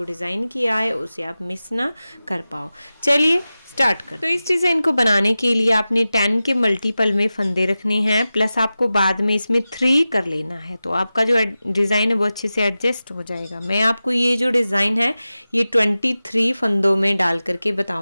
डिज़ाइन किया है उसे आप मिस ना कर पाओ। चलिए स्टार्ट कर। तो इस डिज़ाइन को बनाने के लिए आपने 10 के मल्टीपल में फंदे रखने हैं, प्लस आपको बाद में इसमें 3 कर लेना है, तो आपका जो डिज़ाइन है वो अच्छे से एडजस्ट हो जाएगा। मैं आपको ये जो डिज़ाइन है ये 23 फंदों में डाल करके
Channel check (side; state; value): both; inverted; correlation -0.95